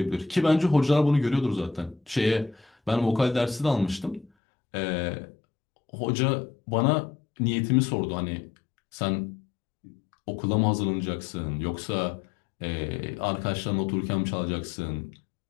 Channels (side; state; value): right; drops out; at 4.3 s